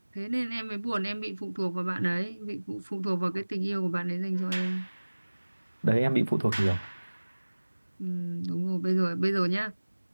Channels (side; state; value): both; inverted; correlation -1.00